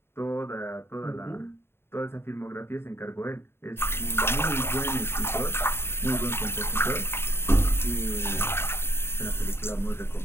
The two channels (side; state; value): right; late; 0.11 ms